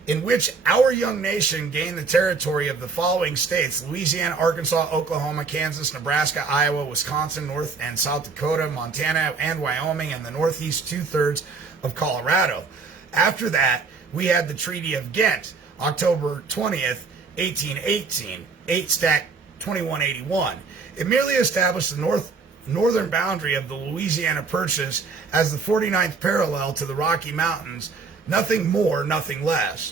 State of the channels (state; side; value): quieter; left; 4.7 dB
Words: in which our young nation gained the territory of the following states: Louisiana, Arkansas, Oklahoma, Kansas, Nebraska, Iowa, Wisconsin, North and South Dakota, Montana, and Wyoming, and the northeast 2/3 of Colorado. After that, we had the Treaty of Ghent, October 20th, 1818, 8 Stat 2181. It merely established the northern boundary of the Louisiana Purchase as the 49th parallel to the Rocky Mountains. Nothing more, nothing